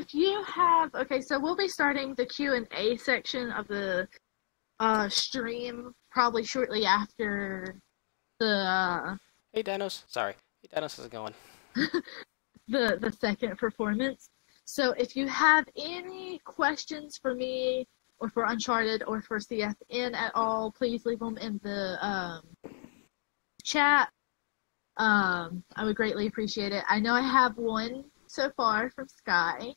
you have so we'll be starting the Q&A section of the stream probably shortly after the Hey Danos, sorry. Hey Danos, how's it going? the second performance. So if you have any questions for me or for Uncharted or for CFN at all, please leave them in the chat. I would greatly appreciate it. I know I have one so far from Sky.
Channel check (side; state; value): right; silent; digital silence